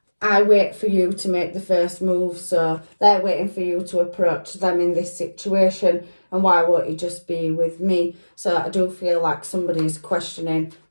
I wait for you to make the first move. So they're waiting for you to approach them in this situation. And why won't you just be with me? So I do feel like somebody is questioning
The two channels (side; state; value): both; inverted; correlation -1.00